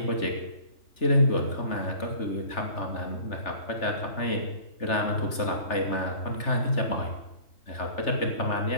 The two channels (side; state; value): right; late; 3.4 ms